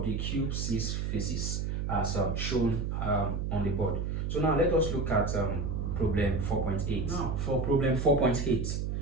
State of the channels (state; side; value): noise; right; hum, 1 dB below the sound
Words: the cube 6 phases as shown on the board. So now let us look at problem 4.8. Now for problem 4.8.